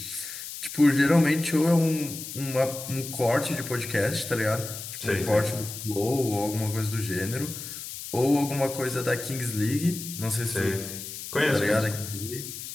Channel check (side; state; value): left; noise; hiss, 9 dB below the sound